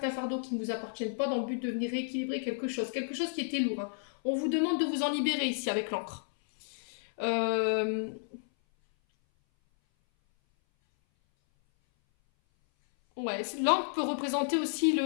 fardeaux qui ne vous appartiennent pas dans le but de venir rééquilibrer quelque chose qui était lourd. Hein. On vous demande de vous en libérer ici avec l'encre. Ouais, l'encre peut représenter aussi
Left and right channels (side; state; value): right; silent; 57 dB below the other